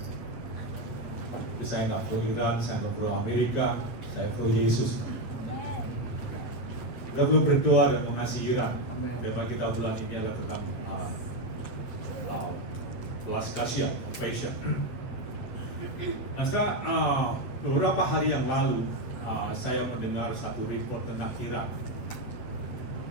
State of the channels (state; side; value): late; right; 8.6 ms